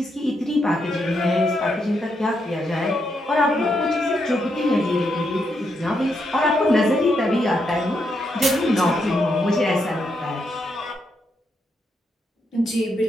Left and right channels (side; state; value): both; normal; correlation 0.80